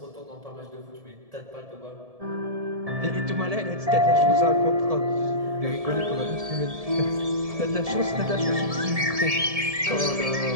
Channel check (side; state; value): left; late; 1.7 ms